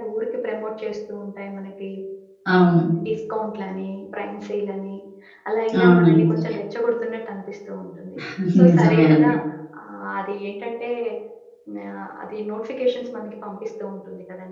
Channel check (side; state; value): both; identical; correlation 1.00